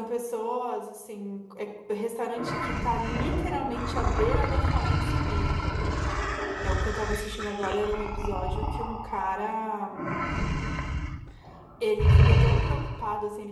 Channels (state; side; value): identical; both; correlation 1.00